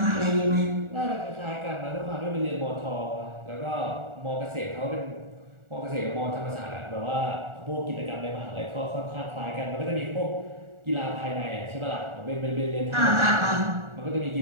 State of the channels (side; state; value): left; late; 1.4 ms